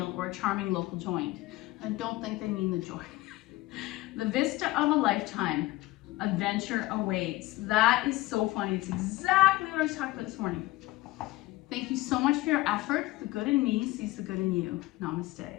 or a charming local joint. I don't think they mean the joint. The vista of a lifetime. Adventure awaits. That is so funny. It's exactly what I was talking about this morning. Thank you so much for your effort. The good in me sees the good in you.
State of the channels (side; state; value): right; quieter; 18.8 dB